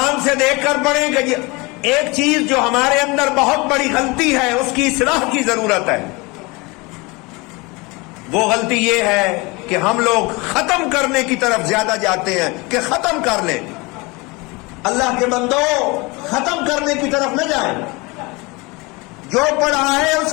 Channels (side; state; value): right; quieter; 25.6 dB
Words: سے دیکھ کر پڑھیں. کہ ایک چیز جو ہمارے اندر بہت بڑی غلطی ہے، اس کی اصلاح کی ضرورت ہے. وہ غلطی یہ ہے کہ ہم لوگ ختم کرنے کی طرف زیادہ جاتے ہیں کہ ختم کر لیں. اللہ کے بندو، ختم کرنے کی طرف نہ جائیں، جو پڑھا ہے اس